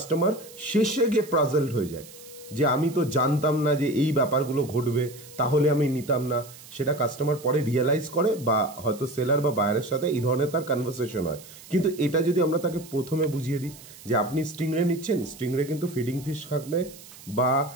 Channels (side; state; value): right; noise; hiss, 19 dB below the sound